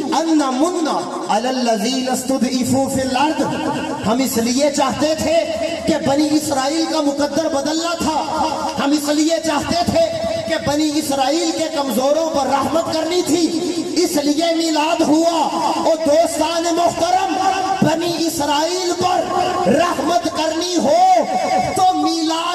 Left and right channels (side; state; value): both; identical; correlation 1.00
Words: أَن نَّمُنَّ عَلَى الَّذِينَ اسْتُضْعِفُوا فِي الْأَرْضِ، ہم اس لیے چاہتے تھے کہ بنی اسرائیل کا مقدر بدلنا تھا، ہم اس لیے چاہتے تھے کہ بنی اسرائیل کے کمزوروں پر رحمت کرنی تھی، اس لیے میلاد ہوا۔ اور دوستان محترم، بنی اسرائیل پر رحمت کرنی ہو تو